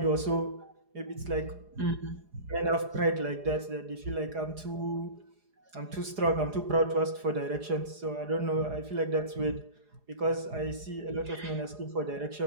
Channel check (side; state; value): left; late; 4.8 ms